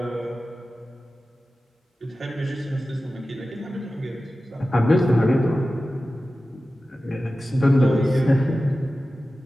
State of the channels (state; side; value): normal; both; correlation 0.95